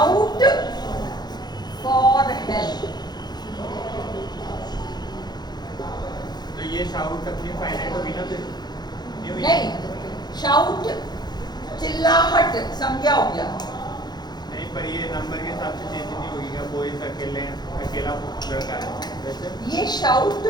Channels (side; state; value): right; late; 0.20 ms